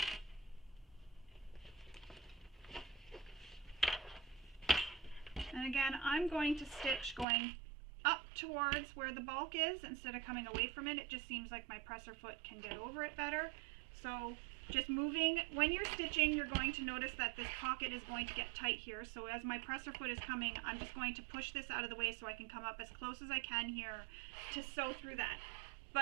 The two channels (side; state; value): left; drops out; at 7.2 s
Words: And again, I'm going to stitch going up towards where the bulk is instead of coming away from it. It just seems like my presser foot can get over it better. So just moving, when you're stitching, you're going to notice that this pocket is going to get tight here. So as my presser foot is coming, I'm just going to push this out of the way so I can come up as close as I can here to sew through that.